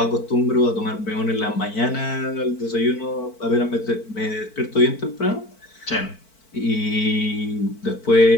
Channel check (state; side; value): late; right; 4.5 ms